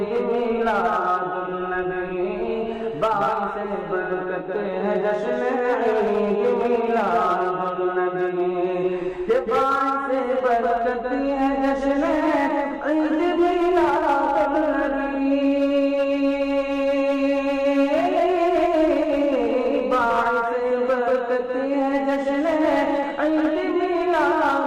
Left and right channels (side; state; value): both; identical; correlation 1.00